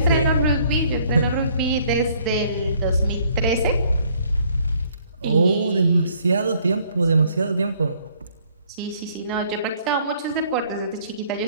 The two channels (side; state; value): both; inverted; correlation -0.62